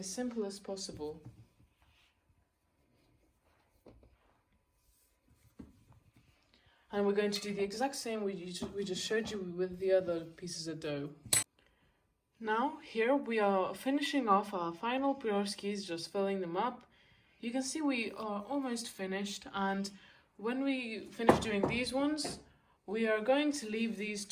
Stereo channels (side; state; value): both; identical; correlation 1.00